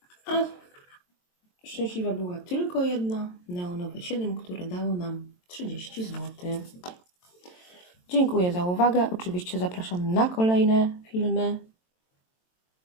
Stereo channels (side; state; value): right; late; 22 ms